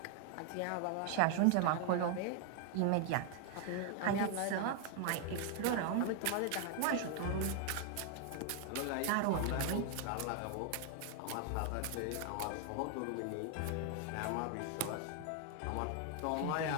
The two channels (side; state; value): both; different; correlation 0.00